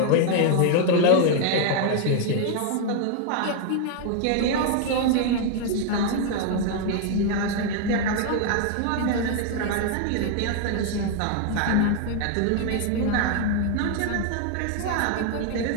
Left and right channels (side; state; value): both; different; correlation 0.00